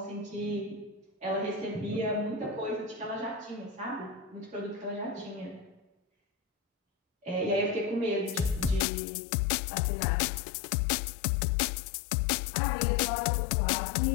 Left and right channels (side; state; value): right; drops out; at 8.8 s